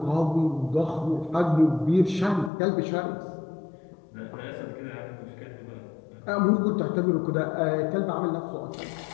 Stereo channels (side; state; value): right; drops out; at 2.5 s